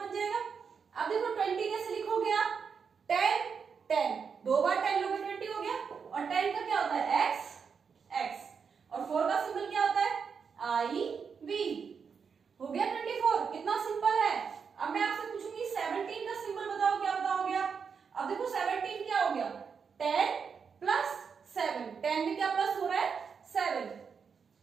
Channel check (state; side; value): quieter; left; 6.1 dB